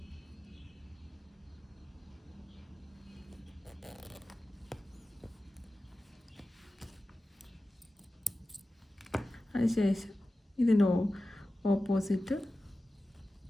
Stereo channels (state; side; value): normal; both; correlation 0.94